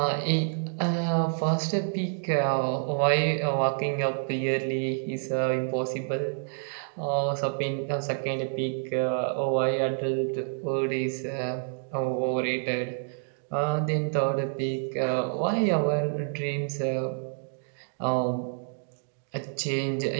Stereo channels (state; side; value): silent; left; digital silence